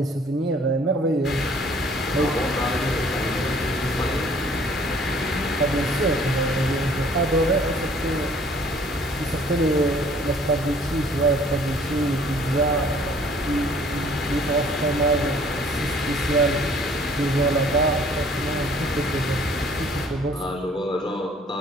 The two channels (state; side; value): normal; both; correlation 0.56